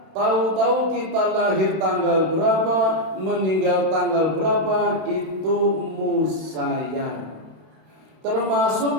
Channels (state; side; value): late; left; 32 ms